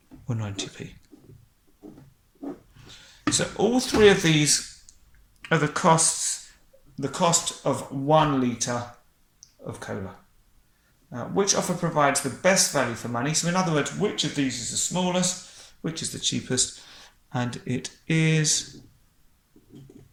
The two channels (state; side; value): identical; both; correlation 1.00